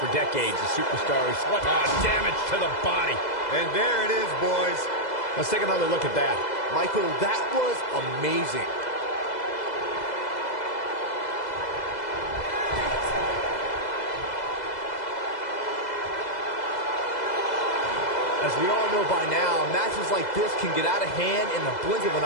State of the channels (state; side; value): late; right; 2.0 ms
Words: decades. The superstars, what damage to the body. And there it is, boys. Let's take another look at that. Michael, that was amazing. As we all know by now, matches like this can get out of hand in the blink of an